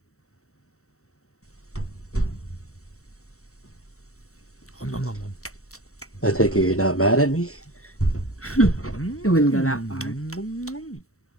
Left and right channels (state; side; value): late; right; 0.64 ms